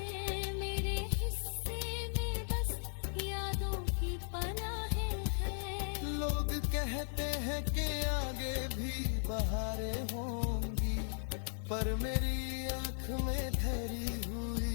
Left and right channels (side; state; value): right; silent; 53 dB below the other